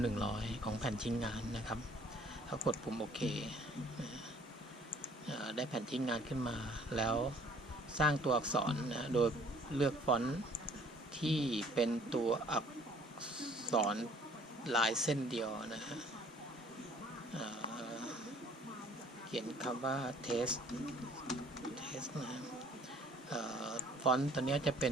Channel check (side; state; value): both; normal; correlation 0.57